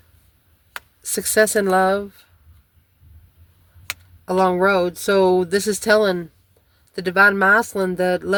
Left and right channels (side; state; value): both; identical; correlation 1.00